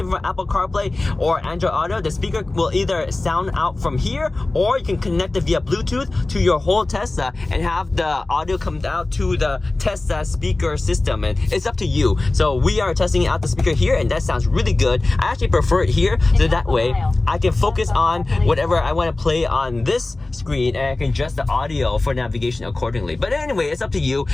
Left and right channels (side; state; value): right; quieter; 3.0 dB